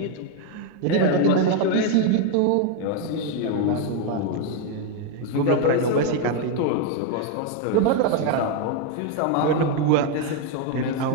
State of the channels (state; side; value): different; both; correlation 0.01